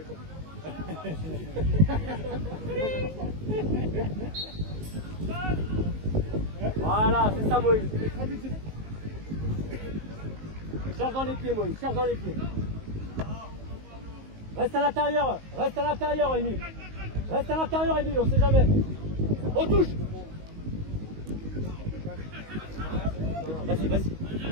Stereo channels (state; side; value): late; left; 19 ms